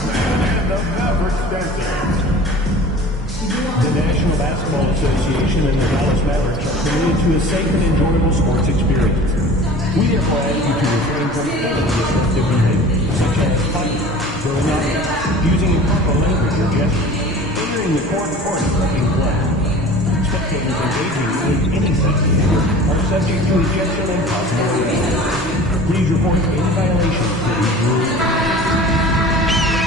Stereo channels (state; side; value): normal; both; correlation 0.41